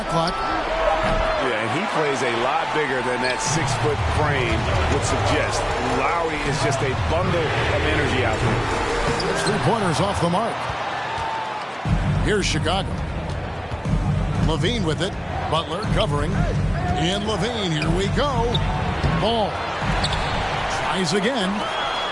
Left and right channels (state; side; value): identical; both; correlation 1.00